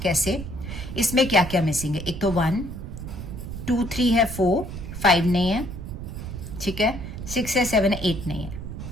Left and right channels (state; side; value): noise; right; rumble, 8 dB below the sound